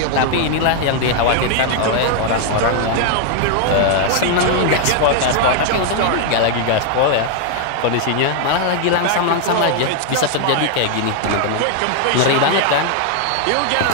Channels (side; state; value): both; different; correlation 0.00